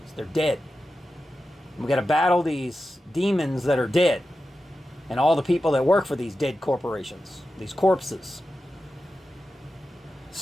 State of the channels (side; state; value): both; normal; correlation 0.92